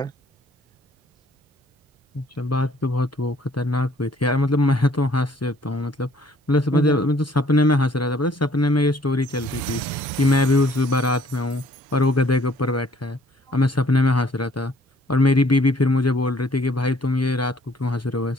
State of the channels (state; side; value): normal; both; correlation 0.60